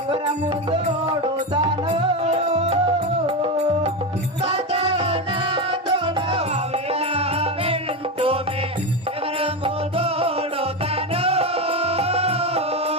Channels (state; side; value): normal; both; correlation 0.15